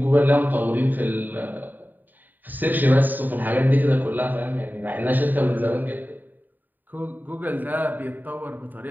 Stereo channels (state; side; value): late; left; 0.088 ms